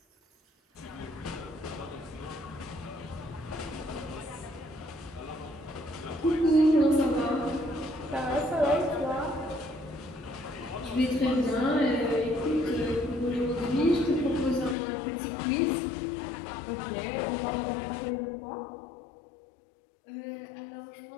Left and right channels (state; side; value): drops out; right; at 14.8 s